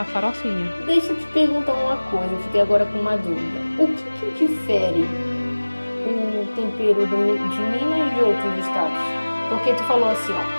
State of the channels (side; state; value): both; inverted; correlation -1.00